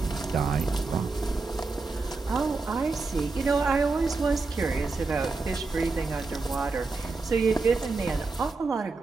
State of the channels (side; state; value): left; quieter; 3.9 dB